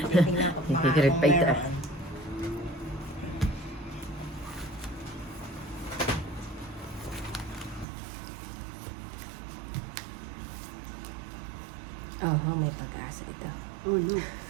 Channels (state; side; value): drops out; left; at 7.9 s